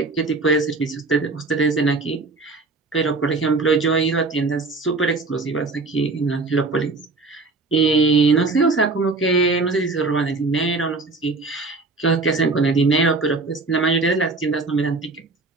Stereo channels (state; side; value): quieter; left; 3.7 dB